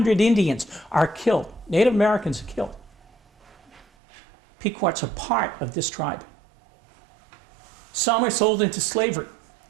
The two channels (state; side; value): drops out; left; at 3.9 s